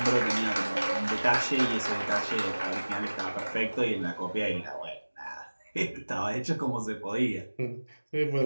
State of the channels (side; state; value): both; inverted; correlation -1.00